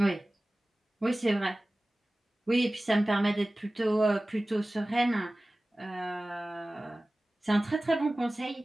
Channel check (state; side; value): normal; both; correlation 0.97